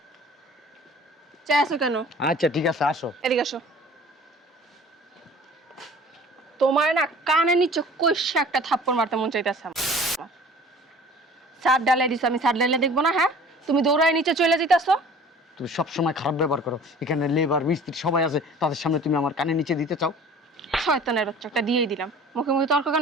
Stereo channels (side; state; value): both; normal; correlation 0.47